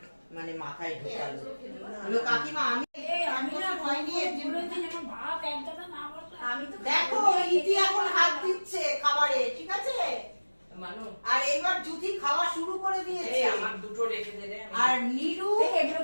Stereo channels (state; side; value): inverted; both; correlation -1.00